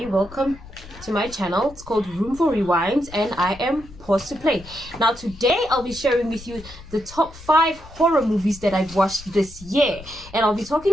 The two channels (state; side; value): noise; left; rumble, 18 dB below the sound